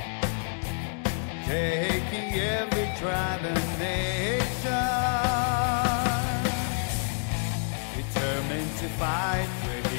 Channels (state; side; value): silent; right; 59 dB below the other